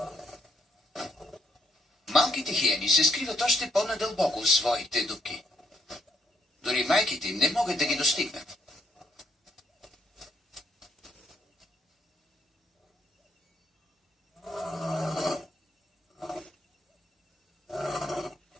Малките хиени се скриват още по-надълбоко в своите дупки. Дори майките им не могат да ги достигнат.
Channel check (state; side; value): normal; both; correlation 0.70